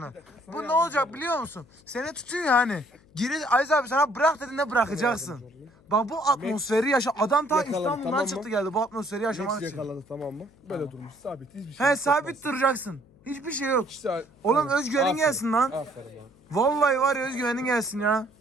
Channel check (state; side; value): noise; left; hum, 29 dB below the sound